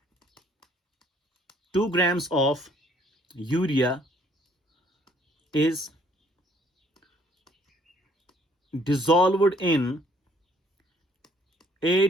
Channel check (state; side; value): normal; both; correlation 0.62